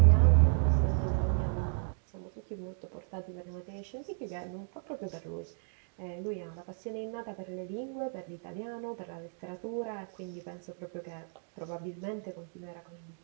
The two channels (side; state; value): left; silent; digital silence